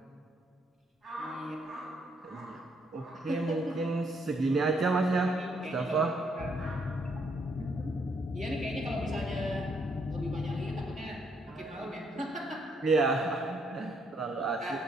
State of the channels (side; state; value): both; normal; correlation 0.72